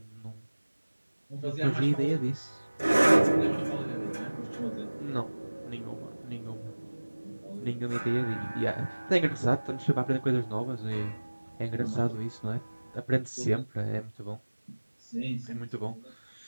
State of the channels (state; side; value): inverted; both; correlation -1.00